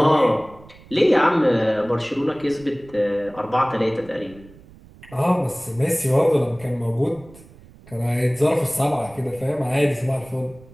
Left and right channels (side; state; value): right; noise; rumble, 23 dB below the sound